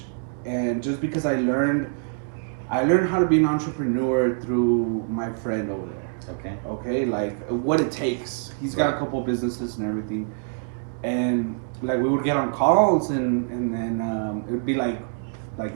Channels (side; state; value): left; silent; digital silence